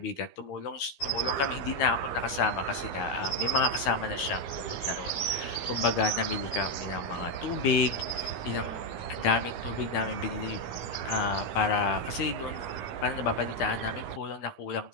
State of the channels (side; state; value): right; late; 14 ms